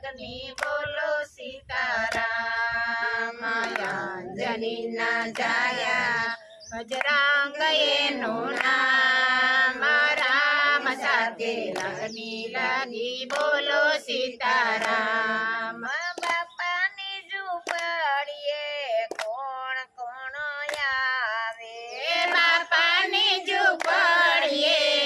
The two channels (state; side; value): identical; both; correlation 1.00